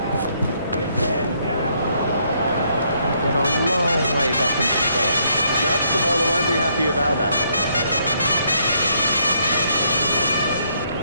Got a long way back into the stand. No, the bowler won't be happy about that.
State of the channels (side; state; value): both; inverted; correlation -0.71